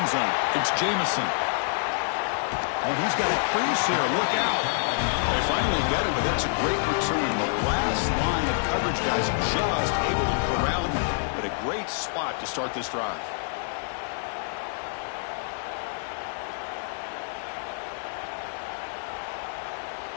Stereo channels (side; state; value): right; silent; 59 dB below the other